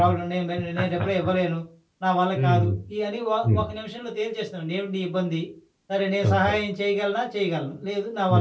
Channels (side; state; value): both; identical; correlation 1.00